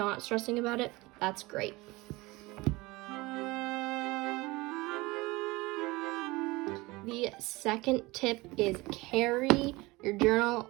stressing about it, that's great. The second tip is carry your journal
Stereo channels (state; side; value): quieter; left; 22.2 dB